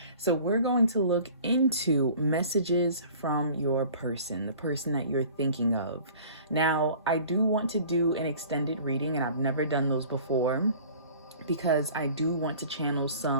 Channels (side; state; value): both; inverted; correlation -0.47